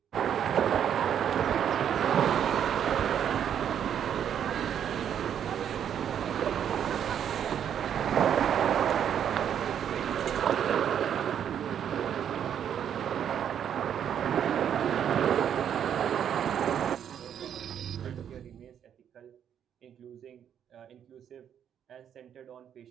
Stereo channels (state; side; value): quieter; left; 9.0 dB